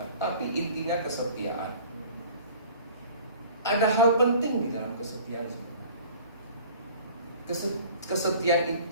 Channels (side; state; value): both; inverted; correlation -0.47